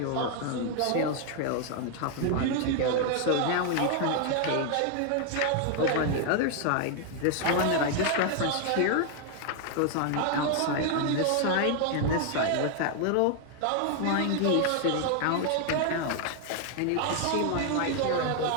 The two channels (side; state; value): both; different; correlation 0.00